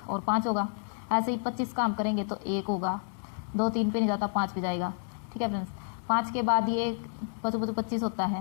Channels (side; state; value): right; silent; digital silence